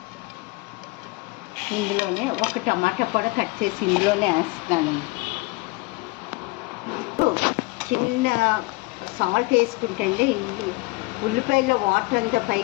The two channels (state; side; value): quieter; right; 24.4 dB